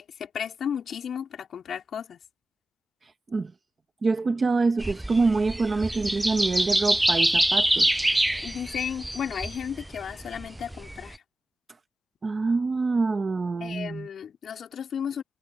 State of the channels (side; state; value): both; normal; correlation 0.95